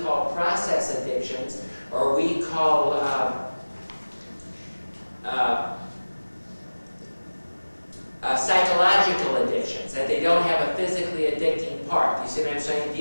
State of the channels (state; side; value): inverted; both; correlation -1.00